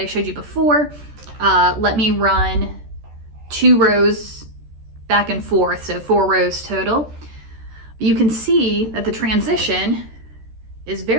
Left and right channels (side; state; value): left; late; 13 ms